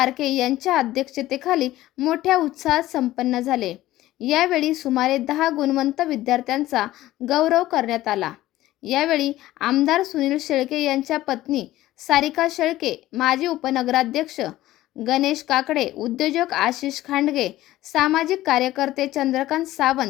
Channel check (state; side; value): quieter; right; 15.6 dB